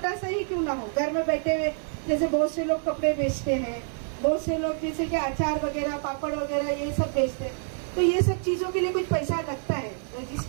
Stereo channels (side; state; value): left; silent; digital silence